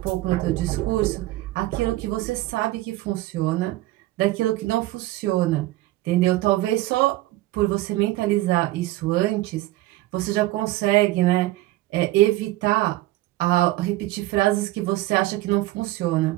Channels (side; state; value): left; quieter; 17.2 dB